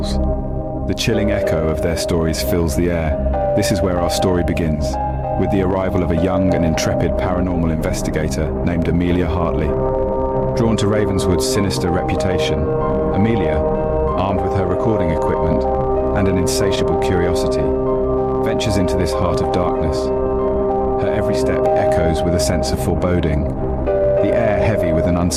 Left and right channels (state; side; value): identical; both; correlation 1.00